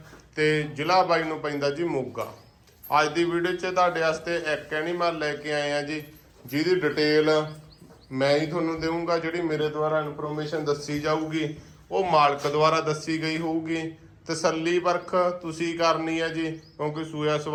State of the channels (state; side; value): identical; both; correlation 1.00